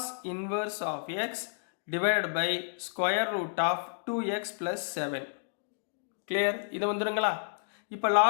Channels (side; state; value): right; silent; digital silence